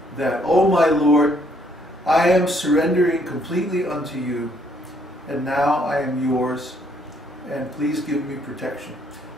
that, oh my Lord, I am surrendering completely unto you, and now I am yours, and please give me protection.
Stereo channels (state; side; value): normal; both; correlation 0.68